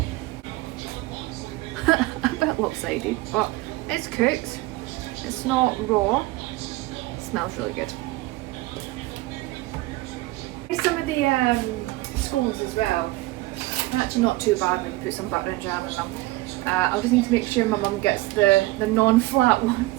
A bit lopsided, but it's cooked. It's not raw. It smells really good. Some of the scones as well. Actually not too bad when you put some butter and jam in them. I'll just need to make sure my mum gets the non-flat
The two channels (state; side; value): quieter; left; 19.4 dB